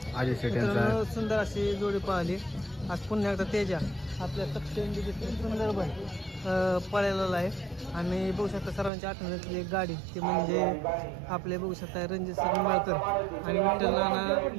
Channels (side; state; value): left; drops out; at 8.9 s